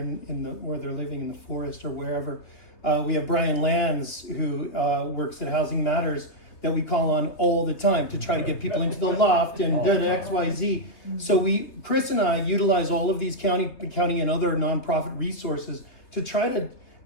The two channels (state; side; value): late; right; 3.3 ms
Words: where they're living in the forest or wherever. We have Brian Lands, who works at Housing Matters, that we call on all the time to try to get people into the loft and XYZ. So Chris and I utilize all of these county and other nonprofit resources to try to